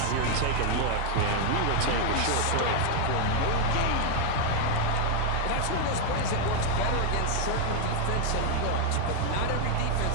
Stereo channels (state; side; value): different; both; correlation 0.00